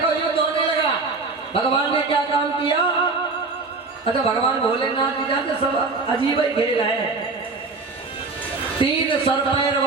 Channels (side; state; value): left; quieter; 3.9 dB